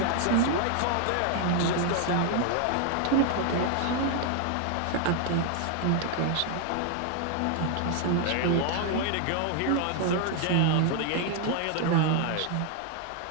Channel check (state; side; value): different; both; correlation 0.00